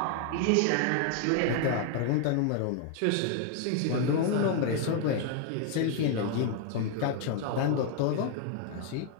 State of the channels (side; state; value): both; different; correlation 0.00